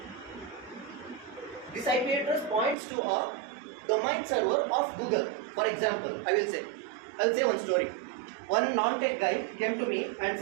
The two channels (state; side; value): drops out; left; at 2.8 s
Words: points to a domain server of Google. For example, I'll say one story. One non-tech guy came to me and